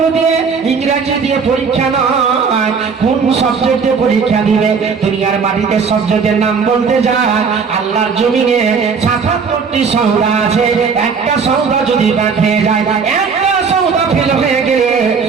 দিয়ে, ইংরেজি দিয়ে পরীক্ষা নয়, কোন সাবজেক্টে পরীক্ষা দিবে। দুনিয়ার মাটিতে সাবজেক্টের নাম বলতে যায়, আল্লাহর জমিনে ৭৭টি সওদা আছে, একটা সওদা যদি বাদ হয়ে যায়, একটা সওদা ফেল হয়ে গেলে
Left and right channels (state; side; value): quieter; left; 5.6 dB